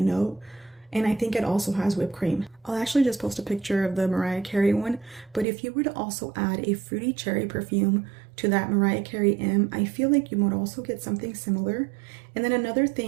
note, and I think it also has whipped cream. I'll actually just post a picture of the Mariah Carey one, but if you were to also add a fruity cherry perfume to that Mariah Carey M, I feel like you might also get something similar. And then another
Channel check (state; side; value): drops out; left; at 5.5 s